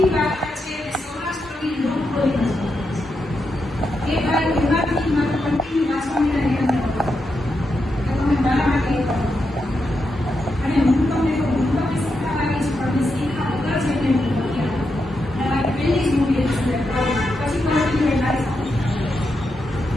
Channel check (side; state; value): both; normal; correlation 0.85